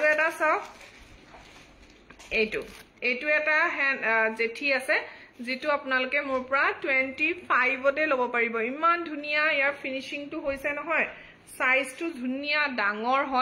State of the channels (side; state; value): both; identical; correlation 1.00